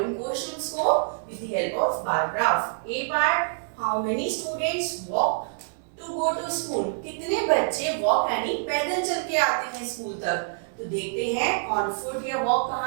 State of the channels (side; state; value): left; silent; digital silence